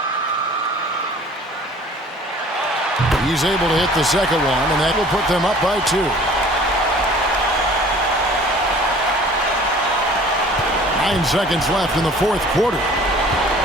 He's able to hit the second one, and that will put them up by 2. 9 seconds left in the fourth quarter.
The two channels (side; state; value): both; normal; correlation 0.49